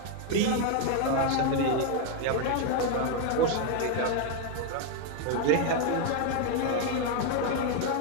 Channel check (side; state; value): both; different; correlation 0.01